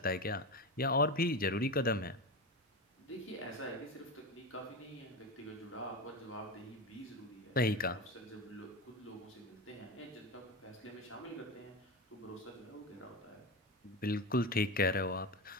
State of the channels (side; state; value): both; normal; correlation 0.20